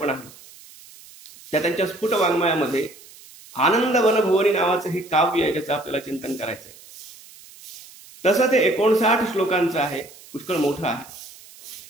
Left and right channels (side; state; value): right; noise; hiss, 21 dB below the sound